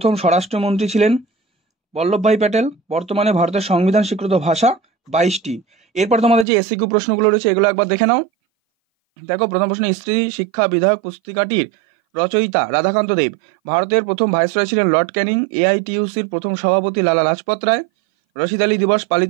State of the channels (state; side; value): drops out; left; at 6.5 s